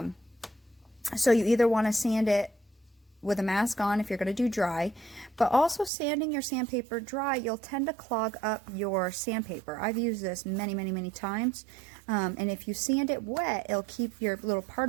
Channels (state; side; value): drops out; left; at 5.9 s